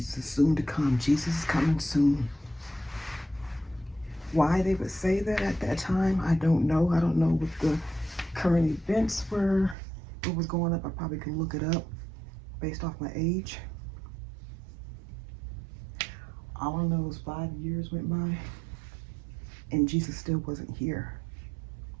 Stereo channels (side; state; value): left; drops out; at 9.8 s